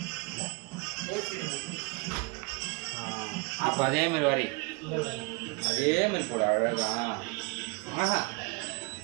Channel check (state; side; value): quieter; left; 30.0 dB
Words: அப்போ அதே மாதிரி வரி அதே மாதிரி போடு. அழகா ஆஹா